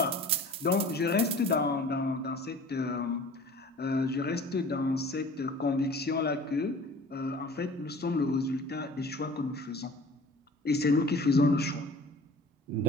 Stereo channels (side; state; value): both; normal; correlation 0.45